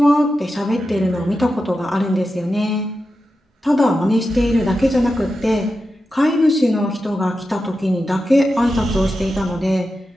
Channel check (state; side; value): normal; both; correlation 0.90